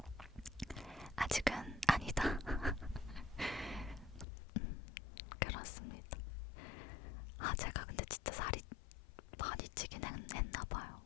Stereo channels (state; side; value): drops out; right; at 4.2 s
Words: 아직은 아니다. 그렇습니다. 아 제가 근데 진짜 살이 많이 찌긴 했나봐요.